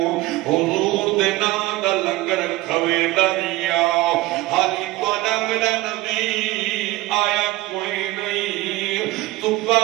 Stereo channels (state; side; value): quieter; left; 18.5 dB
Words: حضور دے نام دا لنگر کھوے دریا حالی توڑا میرا نبی آیا کوئی نہیں قبہ